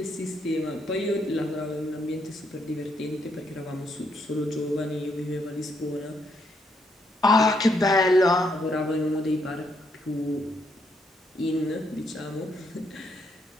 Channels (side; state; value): both; normal; correlation 0.75